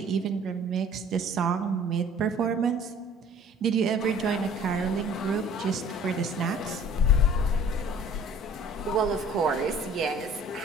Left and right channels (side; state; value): both; normal; correlation 0.50